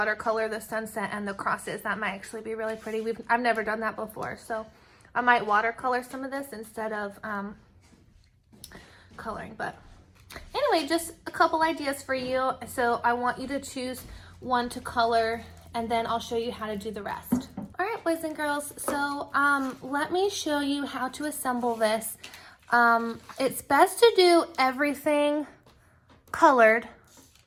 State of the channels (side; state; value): both; identical; correlation 1.00